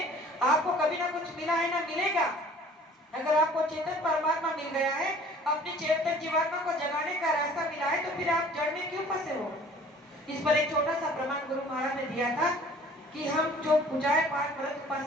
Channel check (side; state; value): both; normal; correlation 0.51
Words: आपको कभी ना कुछ मिला है ना मिलेगा। अगर आपको चेतन परमात्मा मिल गया है, अपनी चेतन जीवात्मा को जगाने का रास्ता मिला है, तो फिर आप जड़ में क्यों फंसे हो। इस पर एक छोटा सा प्रमाण गुरु महाराज ने दिया था कि हम जो पूजाएं पाठ व्रत